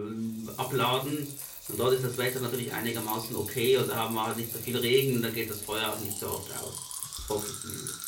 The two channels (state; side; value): identical; both; correlation 1.00